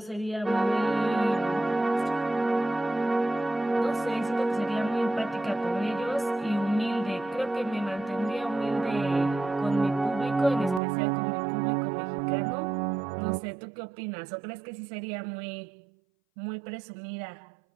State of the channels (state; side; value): drops out; left; at 10.8 s